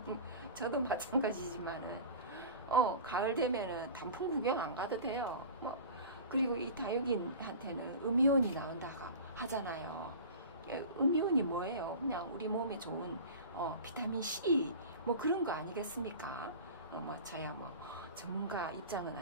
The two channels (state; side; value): inverted; both; correlation -0.35